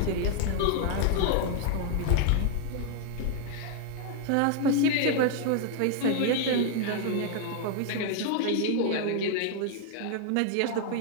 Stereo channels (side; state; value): both; different; correlation 0.00